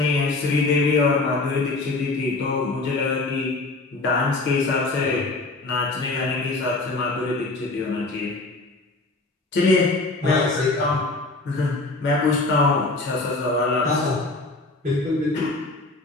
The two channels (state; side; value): quieter; right; 3.2 dB